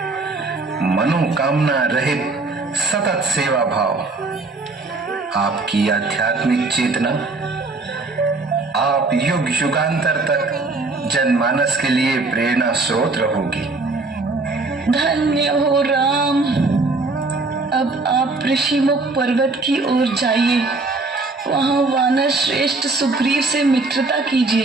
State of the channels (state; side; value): quieter; left; 3.5 dB